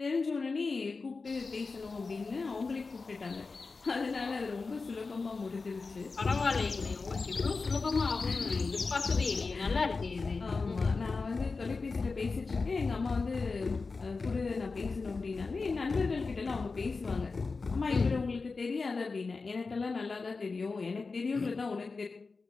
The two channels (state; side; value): quieter; right; 4.2 dB